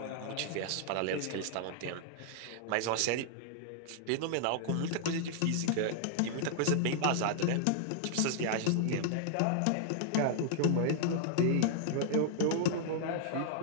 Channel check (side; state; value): both; different; correlation 0.00